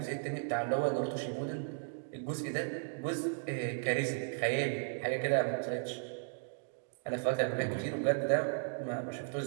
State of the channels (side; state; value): left; silent; digital silence